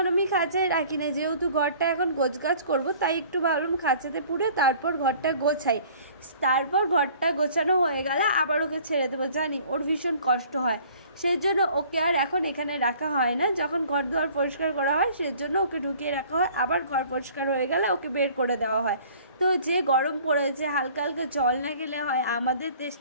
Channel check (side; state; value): both; inverted; correlation -0.52